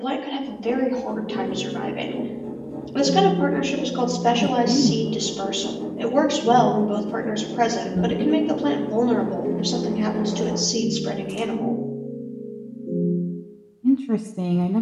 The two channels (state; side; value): identical; both; correlation 1.00